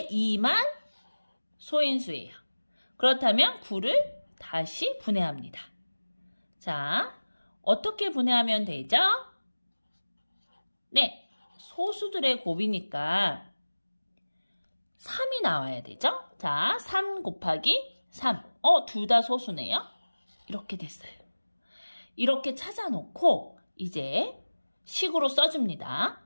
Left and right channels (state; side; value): inverted; both; correlation -1.00